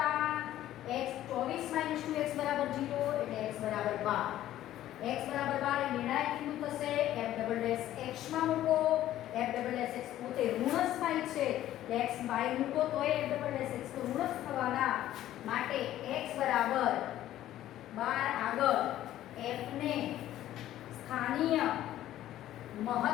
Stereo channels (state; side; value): quieter; right; 13.2 dB